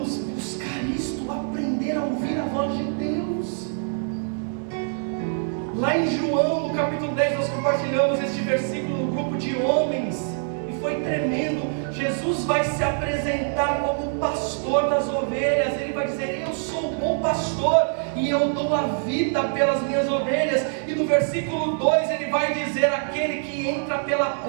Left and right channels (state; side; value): silent; left; 62 dB below the other